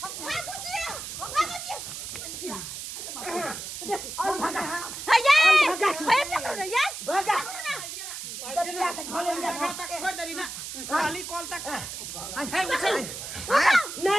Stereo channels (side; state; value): right; noise; hiss, 8 dB below the sound